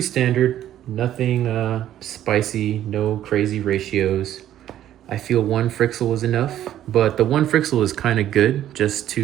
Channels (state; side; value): quieter; left; 11.9 dB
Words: nothing spicy, no crazy ratios. I feel 1 Frixel is enough, but the 1 Frixel is kind of good just